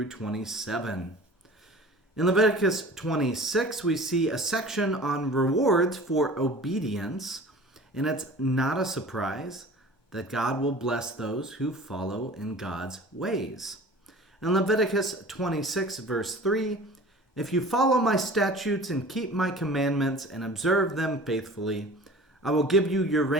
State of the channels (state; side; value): normal; both; correlation 0.42